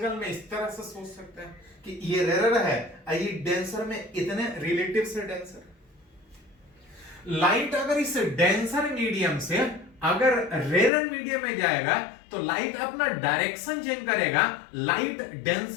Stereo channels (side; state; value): right; drops out; at 10.9 s